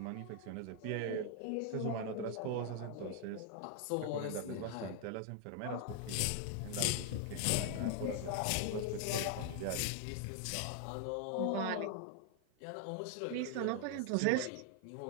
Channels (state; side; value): different; both; correlation 0.00